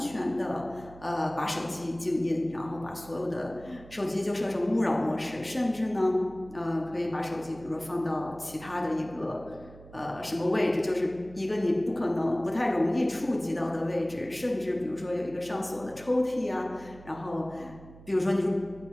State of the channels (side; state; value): right; noise; hum, 19 dB below the sound